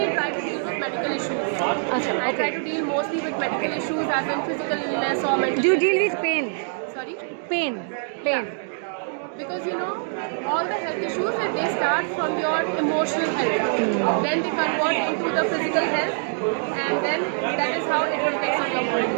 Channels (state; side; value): silent; left; 62 dB below the other